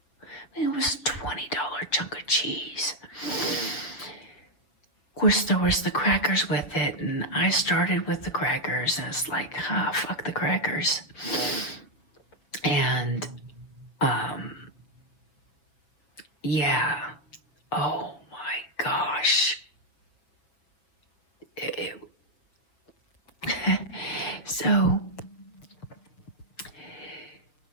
it was a $20 chunk of cheese. Of course, there was the crackers with it, and I started with the crackers, and it's fuck the crackers. And yeah, oh my gosh. So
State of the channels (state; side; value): late; right; 6.5 ms